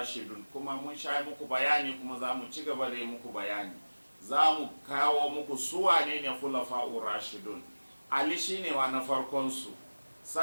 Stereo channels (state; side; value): inverted; both; correlation -1.00